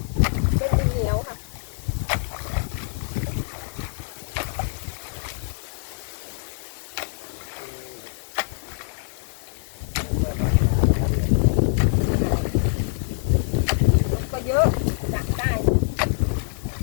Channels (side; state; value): right; silent; digital silence